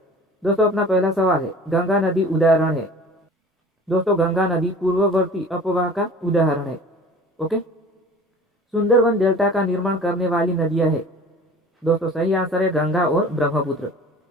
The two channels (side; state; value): both; normal; correlation 0.43